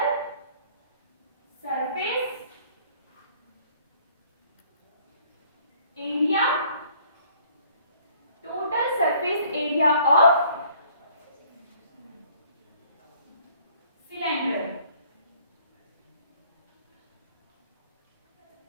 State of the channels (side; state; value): both; inverted; correlation -0.57